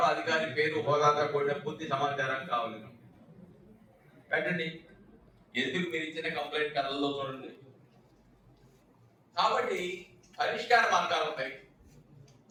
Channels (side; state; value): both; identical; correlation 1.00